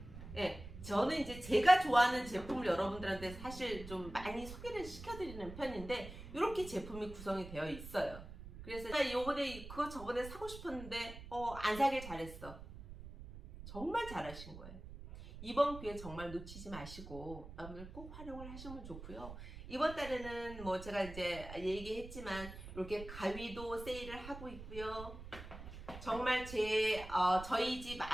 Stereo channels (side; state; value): right; noise; rumble, 12 dB below the sound